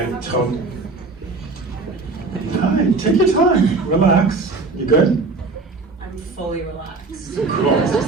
told. Hi, take your time. Relax. You good? I'm fully relaxed. Cool. It's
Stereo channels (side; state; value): left; quieter; 3.7 dB